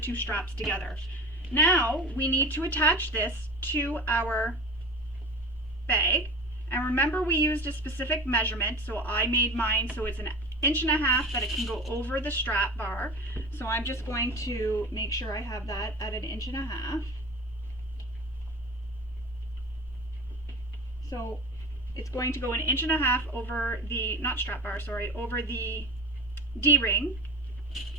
straps together. Now we need to attach this to our bag. And remember, we used a specific measurement, so I made mine so it's 1.5 inches that it can go over the strap bar. So I'm just going to make sure I have that at 1.5 inches. So it's going to go 1.5 inches over the, not strap bar, sorry, over the D-ring.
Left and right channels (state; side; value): normal; both; correlation 0.34